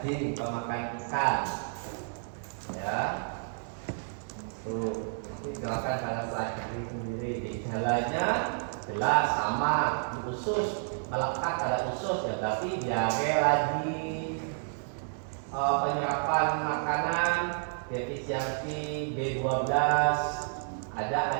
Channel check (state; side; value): silent; left; 57 dB below the other